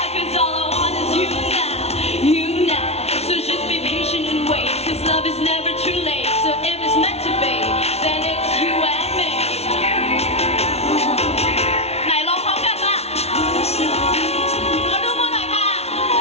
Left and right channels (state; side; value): late; right; 0.31 ms